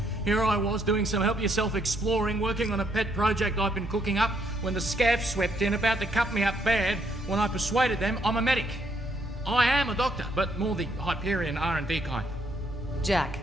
Here I was doing some help-yourself exploring, working on a pet project I've been cooking up, when the scavs swept in, about to cut me up bad, when I persuaded them I'm a medic. I am a doctor, but more the Hyperion R&D kind. Jack,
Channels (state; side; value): normal; both; correlation 0.72